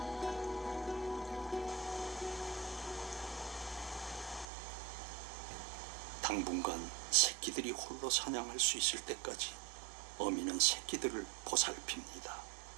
당분간 새끼들이 홀로 사냥할 수 있을 때까지 어미는 새끼들을 보살핍니다.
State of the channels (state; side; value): drops out; left; at 4.5 s